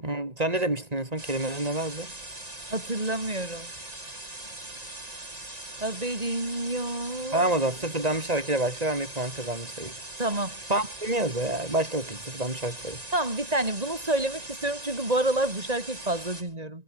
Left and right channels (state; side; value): late; left; 1.9 ms